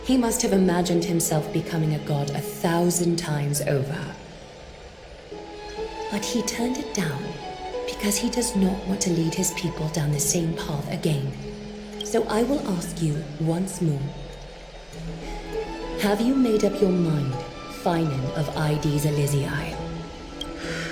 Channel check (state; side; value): identical; both; correlation 1.00